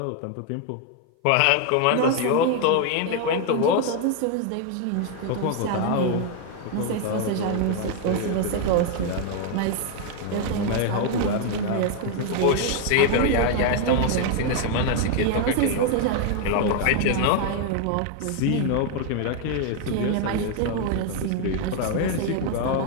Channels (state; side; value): different; both; correlation 0.00